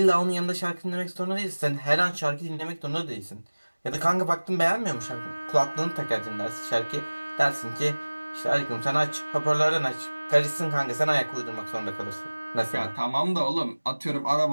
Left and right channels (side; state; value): both; inverted; correlation -1.00